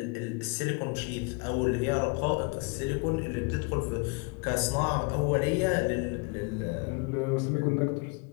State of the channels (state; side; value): quieter; right; 30.1 dB